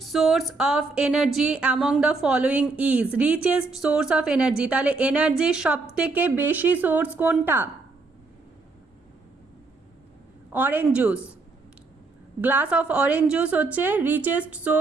source of energy among the following is richest source of energy তাহলে এনার্জির সবথেকে বেশি সোর্স কোনটা orange juice glass of orange juice হচ্ছে richest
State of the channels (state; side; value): quieter; left; 3.7 dB